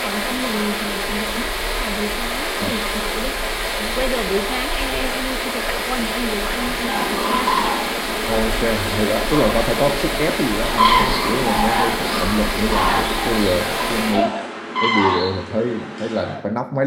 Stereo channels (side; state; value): both; identical; correlation 1.00